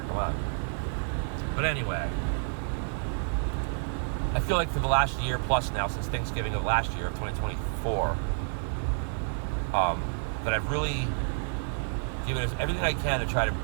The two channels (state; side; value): silent; left; 58 dB below the other